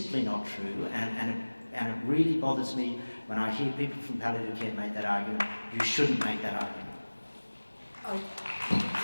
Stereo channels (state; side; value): inverted; both; correlation -1.00